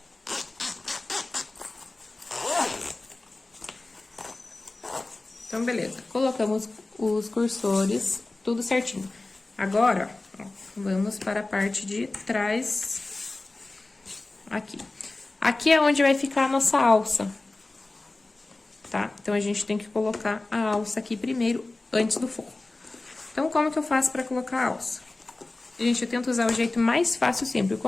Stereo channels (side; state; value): right; quieter; 3.1 dB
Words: Então, beleza. Colocamos os cursores, tudo certinho. Agora, ó, vamos para a parte de trás, aqui. Aqui é onde vai ficar a nossa alça, tá? Então, a gente tem que colocar a alça aqui primeiro, antes do forro. Então, como que eu faço para colocar a alça? Gente, eu tento usar o jeito mais fácil sempre.